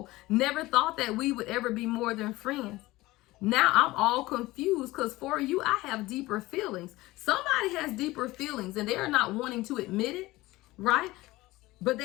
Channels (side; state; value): right; quieter; 19.1 dB